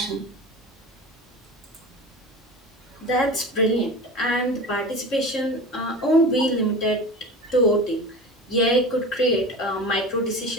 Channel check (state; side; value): normal; both; correlation 0.32